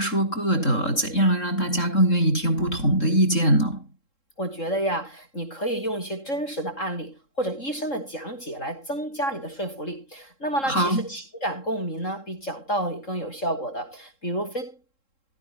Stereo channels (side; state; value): right; late; 3.7 ms